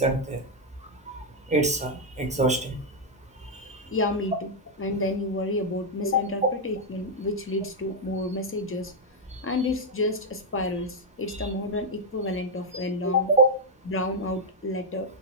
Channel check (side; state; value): both; normal; correlation -0.01